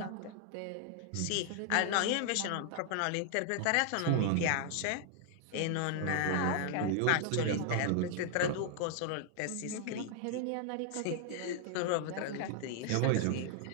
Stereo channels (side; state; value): both; different; correlation 0.00